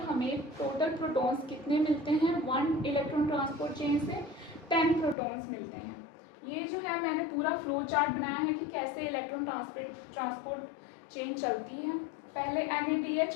हमें टोटल प्रोटॉन्स कितने मिलते हैं, 1 इलेक्ट्रॉन ट्रांसपोर्ट चेन से 10 प्रोटॉन्स मिलते हैं। ये जो है मैंने पूरा फ्लो चार्ट बनाया है कि कैसे इलेक्ट्रॉन ट्रांसपोर्ट चेन चलती है। पहले NADH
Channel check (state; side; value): drops out; right; at 5.2 s